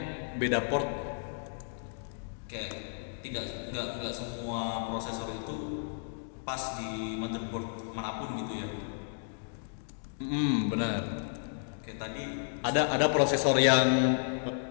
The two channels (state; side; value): silent; right; digital silence